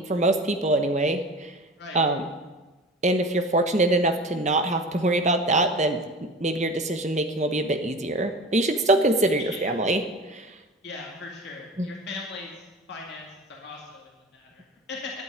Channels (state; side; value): normal; both; correlation 0.35